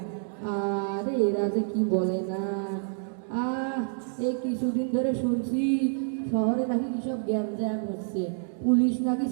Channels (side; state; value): left; silent; digital silence